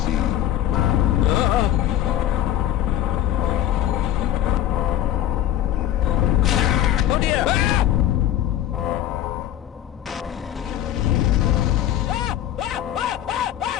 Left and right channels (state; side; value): quieter; right; 11.8 dB